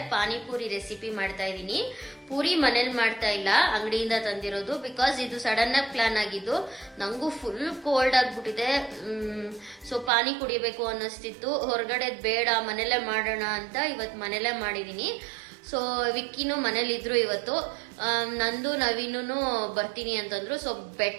ಪಾನಿಪುರಿ ರೆಸಿಪಿ ಮಾಡ್ತಾ ಇದ್ದೀನಿ. ಪೂರಿ ಮನೇಲಿ ಮಾಡ್ತಾ ಇಲ್ಲ, ಅಂಗಡಿಯಿಂದ ತಂದಿರೋದು. ಬಿಕಾಸ್ ಇದು ಸಡನ್ ಆಗಿ ಪ್ಲಾನ್ ಆಗಿದ್ದು. ನಂಗೂ ಫುಲ್ ಕೋಲ್ಡ್ ಆಗ್ಬಿಟ್ಟಿದೆ. ಸೊ ಪಾನಿ ಕುಡಿಬೇಕು ಅನ್ನಿಸ್ತಿತ್ತು. ಹೊರಗಡೆ ಬೇಡ, ಮನೇಲೆ ಮಾಡೋಣ ಅಂತ ಇವತ್ತು ಮನೇಲೆ ಮಾಡಿದೀನಿ. ಸೊ ವಿಕ್ಕಿನೂ ಮನೇಲಿದ್ರು ಇವತ್ತು. ನಂದು ನವೀನು ಬರ್ತೀನಿ ಅಂತಂದ್ರು. ಸೊ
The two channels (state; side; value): drops out; left; at 10.1 s